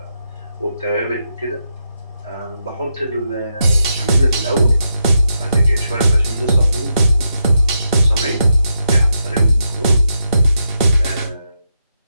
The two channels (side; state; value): both; inverted; correlation -0.84